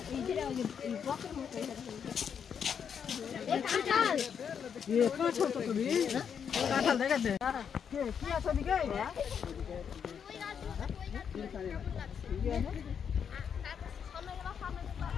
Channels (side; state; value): right; quieter; 7.5 dB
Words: এই কাঁঠাল ये काठल तो भी काठल देखा दे কি আছে দিকে